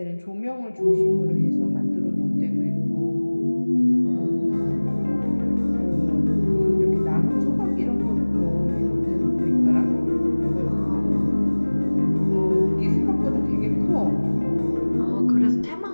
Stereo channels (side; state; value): both; inverted; correlation -1.00